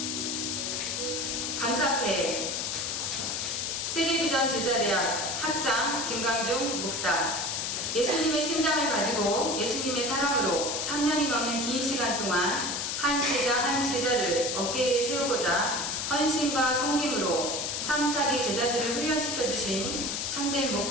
감사패 세계비전 제자대학 학장 김광중 목사, 예수님의 심장을 가지고 예수님의 사랑으로 3년이 넘는 긴 시간 동안 한 제자 한 제자를 어깨에 세우고자 헌신과 섬김으로 3, 4기 제자들을 훈련시켜 주신 참된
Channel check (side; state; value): left; noise; hiss, 2 dB below the sound